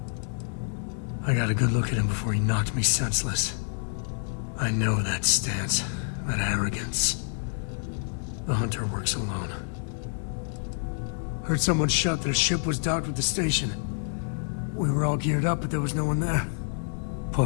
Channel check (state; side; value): silent; right; digital silence